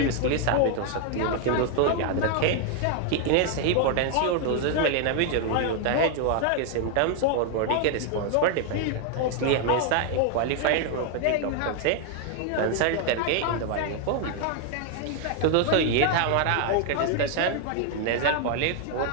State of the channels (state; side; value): different; both; correlation 0.00